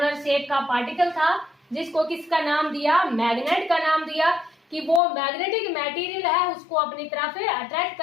शेप का पार्टिकल था जिसको किसका नाम दिया, मैग्नेट का नाम दिया। कि वो मैग्नेटिक मटेरियल है उसको अपनी तरफ अट्रैक्ट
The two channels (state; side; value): drops out; right; at 5.0 s